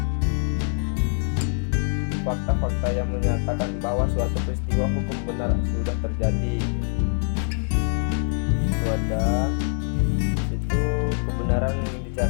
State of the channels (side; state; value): right; silent; 60 dB below the other